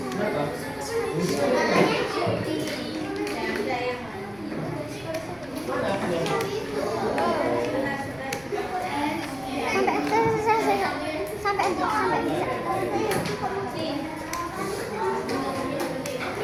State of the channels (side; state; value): right; noise; rumble, 24 dB below the sound